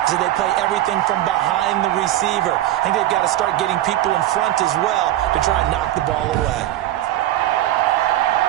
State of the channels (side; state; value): left; quieter; 13.9 dB